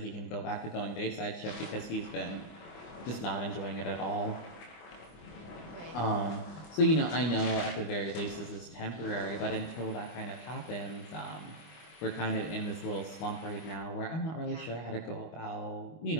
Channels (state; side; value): late; right; 25 ms